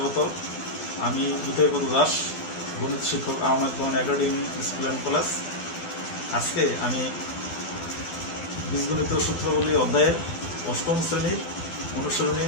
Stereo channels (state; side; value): late; right; 12 ms